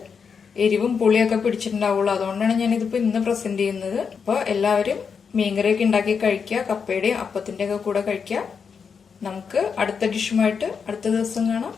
എരിവും പുളിയൊക്കെ പിടിച്ചിട്ടുണ്ടാവുള്ളൂ. അതുകൊണ്ടാണ് ഞാൻ ഇതിപ്പോ ഇന്ന് പ്രസന്റ് ചെയ്യുന്നത്. അപ്പൊ എല്ലാവരും മീൻകറിയൊക്കെ ഉണ്ടാക്കി കഴിക്കുക. കപ്പയുടെയും അപ്പത്തിന്റെ ഒക്കെ കൂടെ കഴിക്കുക. നമുക്ക് അടുത്ത ഡിഷുമായിട്ട് അടുത്ത ദിവസം കാണാം.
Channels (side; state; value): right; quieter; 6.1 dB